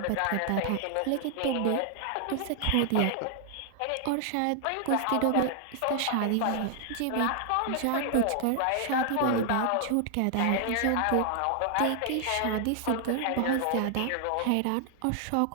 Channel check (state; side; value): different; both; correlation 0.00